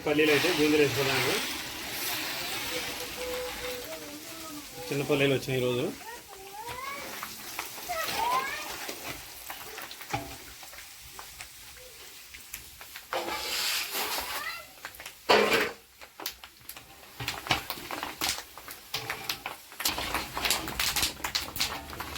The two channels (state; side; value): identical; both; correlation 1.00